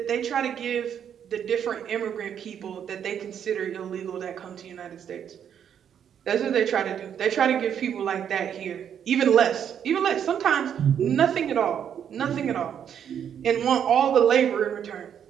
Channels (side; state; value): left; quieter; 8.7 dB